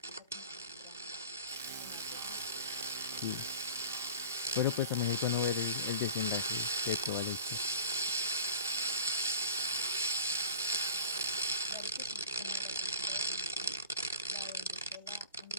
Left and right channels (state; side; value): inverted; both; correlation -0.39